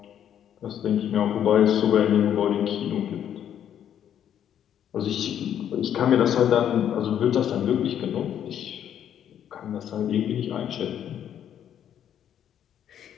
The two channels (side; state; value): right; quieter; 9.8 dB